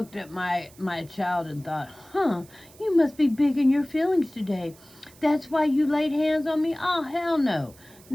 at my child and thought, you must be big in your feelings today. That's why you laid hands on me? Oh, hell no.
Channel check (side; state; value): right; noise; hiss, 25 dB below the sound